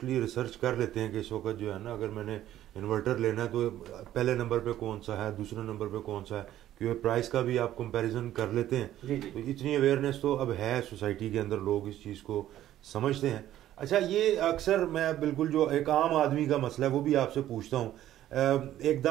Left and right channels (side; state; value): left; quieter; 12.8 dB